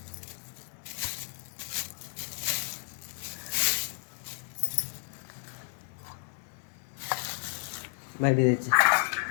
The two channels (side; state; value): right; silent; 56 dB below the other